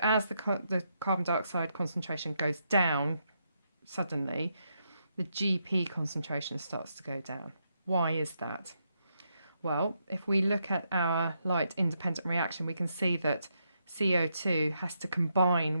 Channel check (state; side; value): inverted; both; correlation -0.80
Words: as the carbon dioxide concentration goes down suddenly, the GP concentration starts to go down. Why is that? Well, if we look at our light independent reaction, we can see that CO2 has to combine